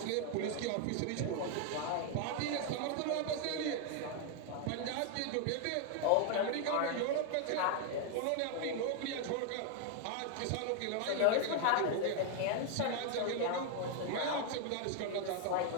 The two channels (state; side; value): different; both; correlation 0.00